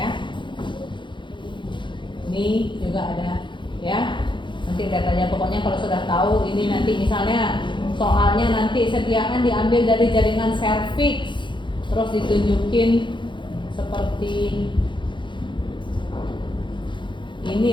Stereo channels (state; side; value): late; right; 0.23 ms